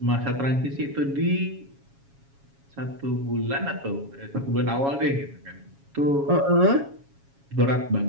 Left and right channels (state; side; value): late; left; 7.3 ms